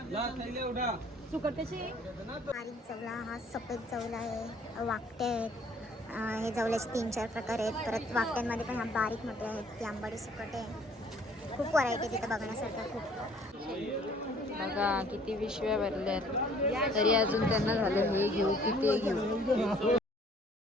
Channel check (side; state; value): both; normal; correlation 0.57